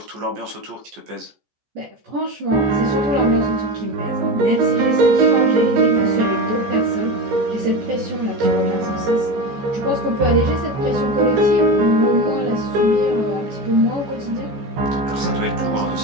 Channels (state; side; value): late; left; 14 ms